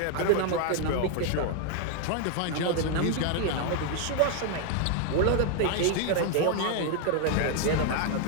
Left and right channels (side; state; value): both; different; correlation 0.00